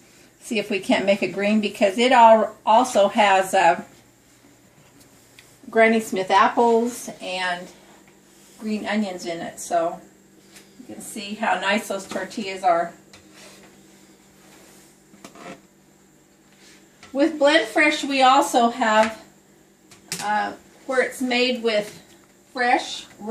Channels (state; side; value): identical; both; correlation 1.00